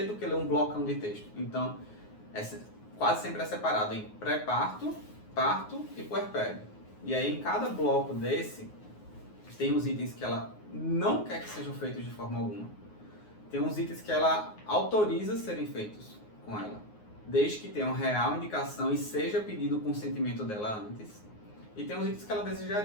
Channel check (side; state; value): right; late; 9.5 ms